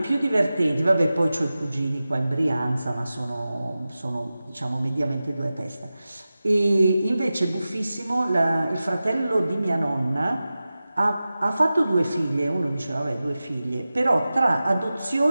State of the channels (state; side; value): inverted; both; correlation -0.95